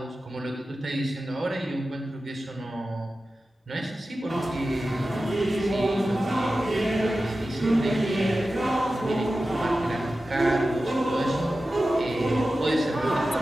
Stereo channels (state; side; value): normal; both; correlation 0.94